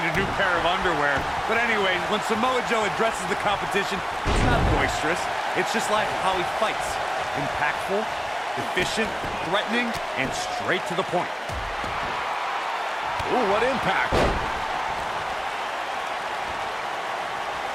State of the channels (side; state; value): both; identical; correlation 1.00